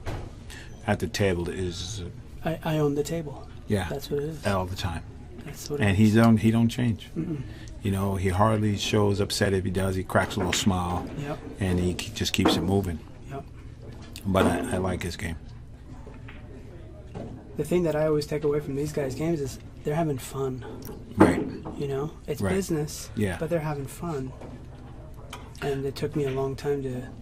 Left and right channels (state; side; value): identical; both; correlation 1.00